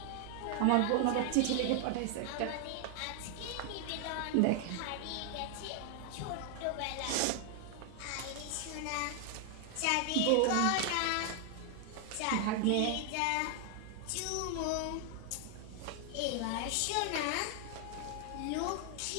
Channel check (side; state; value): both; different; correlation 0.00